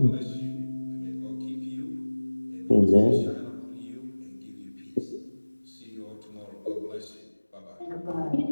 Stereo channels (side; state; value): both; inverted; correlation -1.00